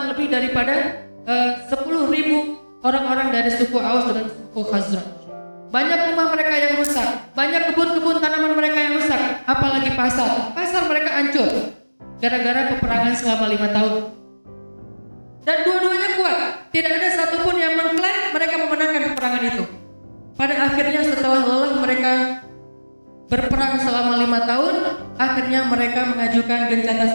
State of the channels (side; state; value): both; inverted; correlation -1.00